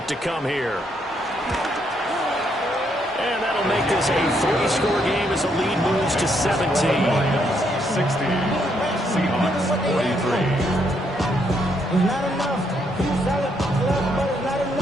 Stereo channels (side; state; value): both; normal; correlation 0.74